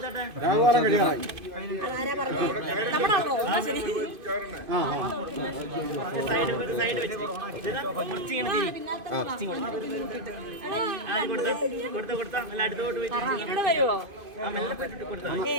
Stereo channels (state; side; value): late; left; 2.5 ms